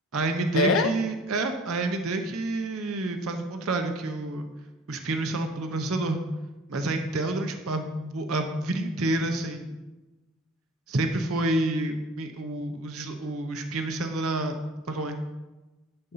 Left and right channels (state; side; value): normal; both; correlation 0.48